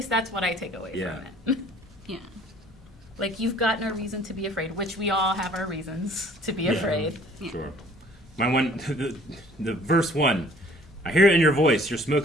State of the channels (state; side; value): normal; both; correlation 0.54